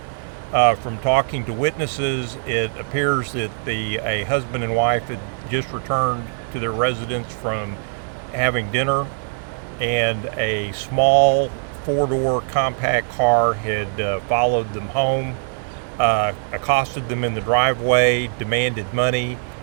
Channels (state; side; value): silent; left; digital silence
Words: From talking to witnesses, it appears that a husband and wife had just returned to their residence from having dinner, and a small four-door compact car had followed them home, accosted them in the driveway, demanded money,